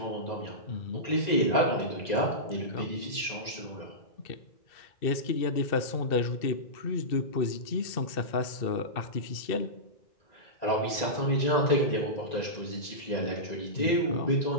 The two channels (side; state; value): right; late; 1.9 ms